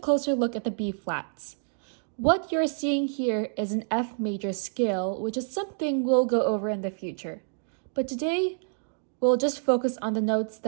look at the B flats. What you're seeing here is an F major scale, which is something we'll go over in the future. But today, we'll just focus on the notes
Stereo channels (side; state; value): left; silent; digital silence